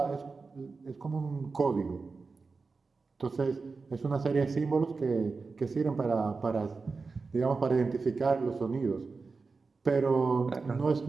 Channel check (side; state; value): left; quieter; 4.3 dB